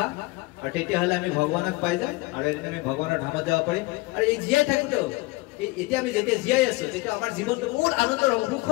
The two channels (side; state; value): right; quieter; 23.0 dB